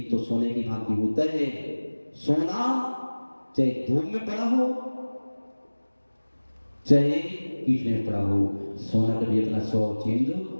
तो सोने की भांति होता है। सोना चाहे धूप में पड़ा हो चाहे कीचड़ में पड़ा हो, सोना कभी अपना स्वभाव चेंज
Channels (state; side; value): inverted; both; correlation -1.00